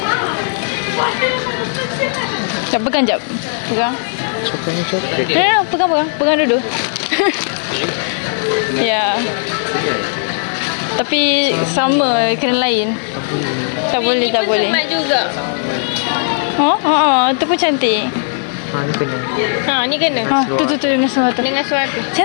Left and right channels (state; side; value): silent; right; digital silence